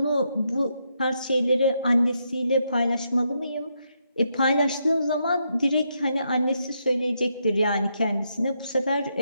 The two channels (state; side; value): inverted; both; correlation -0.79